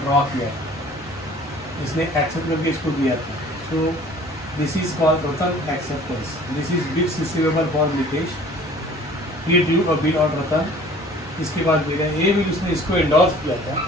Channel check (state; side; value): normal; both; correlation 0.49